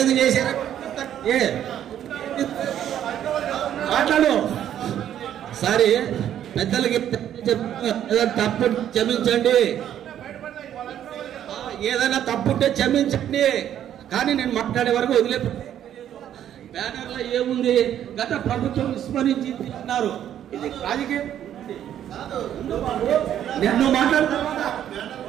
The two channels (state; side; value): quieter; left; 10.6 dB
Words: చేశారా మాట్లాడు సరే పెద్దలకి తప్పు క్షమించండి ఏదైనా తప్పుంటే క్షమించండి కానీ నేను మాట్లాడే వరకు వదిలే బ్యానర్ లో ఏముంది గత ప్రభుత్వం విస్మరించి అన్నారు ఇది రాజకీయం నేను మాట్లాడతా